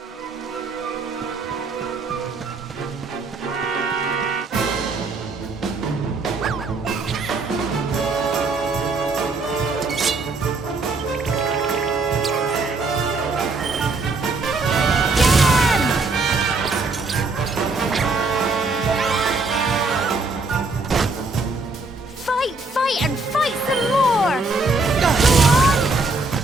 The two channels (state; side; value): quieter; left; 3.6 dB